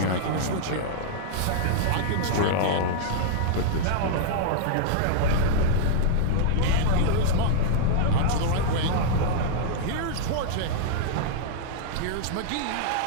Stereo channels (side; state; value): both; different; correlation -0.01